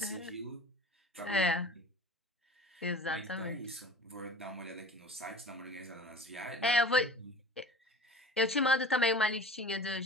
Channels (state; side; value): normal; both; correlation 0.41